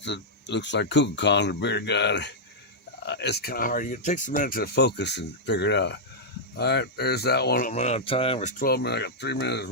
looks like Kukulkan, the bearded guy. It's kind of hard. It takes a minute to focus and figure it out. All right, there's that one. I'm running out of time. There's 12 minutes. I got 3 minutes.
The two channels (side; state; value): both; normal; correlation -0.08